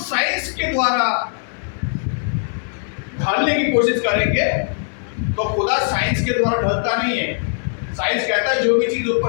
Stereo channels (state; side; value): silent; right; digital silence